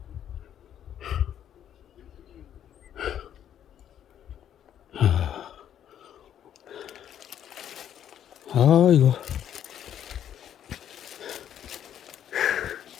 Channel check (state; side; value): quieter; right; 10.0 dB